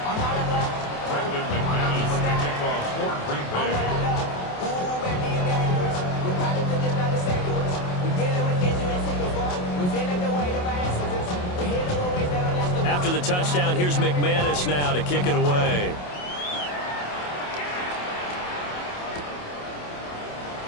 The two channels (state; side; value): late; right; 28 ms